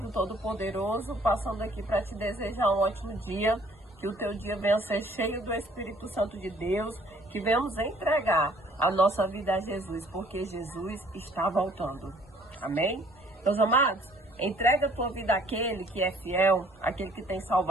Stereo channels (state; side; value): normal; both; correlation 0.58